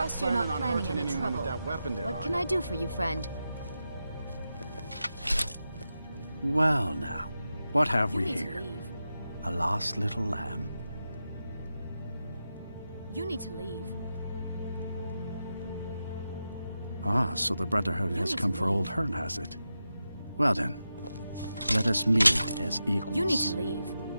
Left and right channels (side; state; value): both; inverted; correlation -0.90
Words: you're not planning any trouble. With that weapon there, What can I do for you, friend? Well, now, what have You we need to here? leave. A lost little lamb. You need to leave. Ah, so the Brotherhood has need come to for leave. old Hearn, has it? Well then, let us meet as equals. You need to leave.